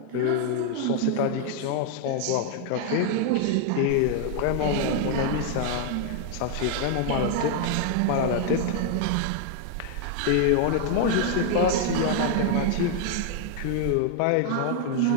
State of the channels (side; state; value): both; different; correlation 0.00